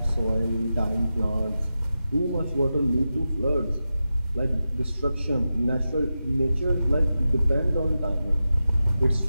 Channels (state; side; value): inverted; both; correlation -0.91